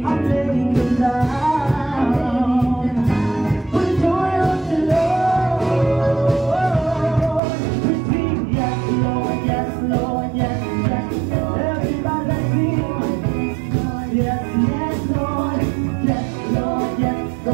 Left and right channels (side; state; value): left; drops out; at 7.4 s